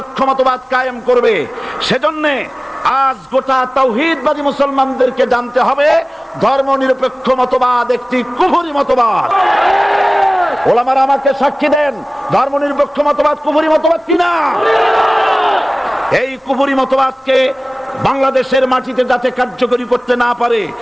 মতবাদ কায়েম করবে, সেজন্যে আজ গোটা তাওহীদবাদী মুসলমানদেরকে জানতে হবে ধর্মনিরপেক্ষ মতবাদ একটি কুফরি মতবাদ। ওলামারা আমাকে সাক্ষী দেন, ধর্মনিরপেক্ষ মতবাদ কুফরি মতবাদ কিনা? এই কুফরি মতবাদকে বাংলাদেশের মাটিতে যাতে কার্যকরী করতে না পারে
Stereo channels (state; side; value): normal; both; correlation 0.98